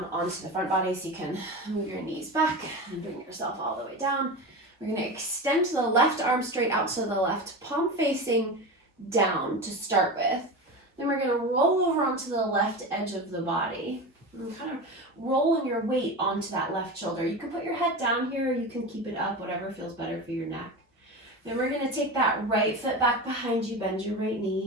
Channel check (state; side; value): normal; both; correlation 0.25